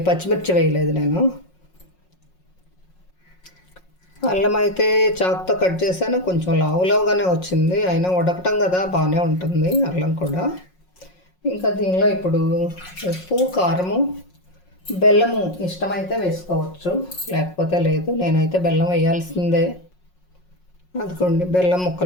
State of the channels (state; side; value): late; right; 5.5 ms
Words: పచ్చిమిర్చి వేయలేదు నేను. అల్లం అయితే చాకుతో కట్ చేశాను, కొంచెం లావుగానే వచ్చింది, అయినా ఉడకటం కదా బాగానే ఉంటుంది అల్లం కూడా. ఇంకా దీనిలో ఇప్పుడు ఉప్పు, కారము, బెల్లము ఇష్టమైతే వేసుకోవచ్చు, లేకపోతే లేదు. నేనైతే బెల్లం వేయాల్సిందే. అదిగోండి బెల్లం